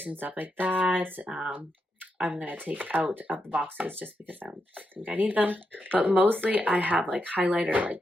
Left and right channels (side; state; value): both; normal; correlation 0.84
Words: and stuff like that, I'm gonna take out of the boxes just because I don't think I need them. But mostly I have like highlighter